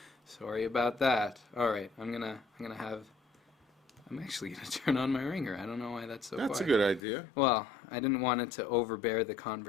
Sorry about that. All right, I'm actually going to turn on my ringer. I don't know why that's so That's a quiet. good idea. Well, I didn't want it to overbear the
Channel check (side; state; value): right; drops out; at 7.0 s